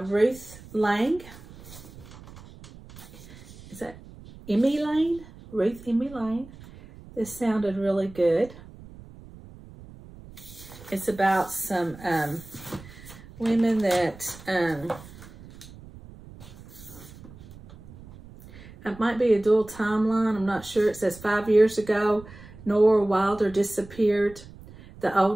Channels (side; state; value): right; noise; rumble, 19 dB below the sound